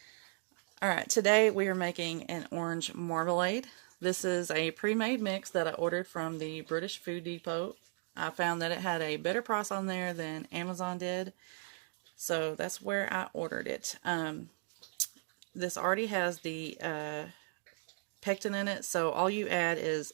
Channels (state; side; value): silent; left; 54 dB below the other